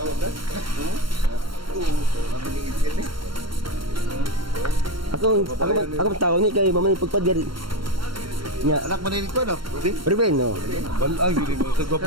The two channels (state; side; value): late; left; 0.73 ms